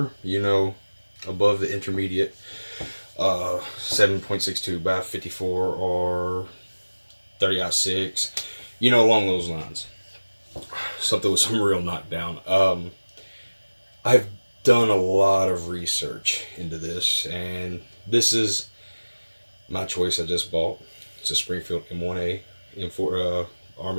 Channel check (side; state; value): both; inverted; correlation -1.00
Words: above the intermediate 7.62 by 54 or 30-06, along those lines. Something with some real knockdown. I've done a lot of research into this, and this is my choice. I just bought. It's a Springfield M1a. M4